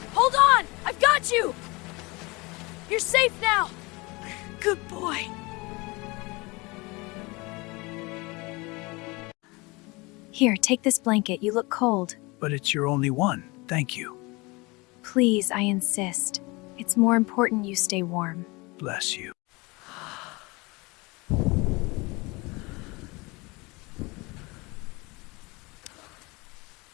Hold on! I've got you! You're safe now! Good boy. Here, take this blanket. You look cold. But it's your only one. Thank you. Please, I insist. It's more important you stay warm. Bless you.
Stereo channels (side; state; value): right; quieter; 25.2 dB